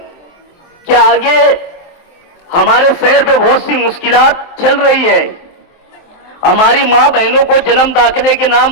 कि आगे हमारे शहर पे बहुत सी मुश्किलात चल रही है। हमारी माँ बहनों को जन्म दाखिले के नाम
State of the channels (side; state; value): right; late; 23 ms